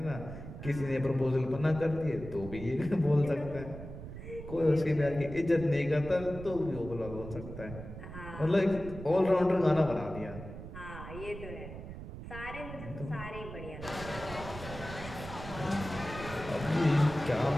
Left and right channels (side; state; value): right; noise; rumble, 11 dB below the sound